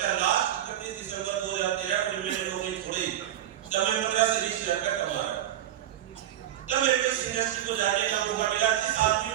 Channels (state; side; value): quieter; left; 11.7 dB